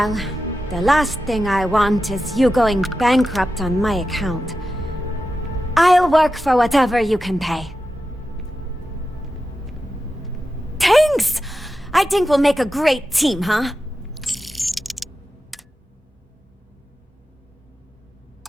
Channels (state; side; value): normal; both; correlation 0.91